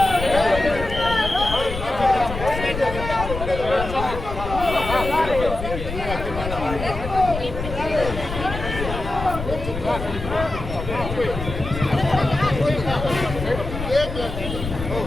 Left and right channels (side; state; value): left; noise; rumble, 7 dB below the sound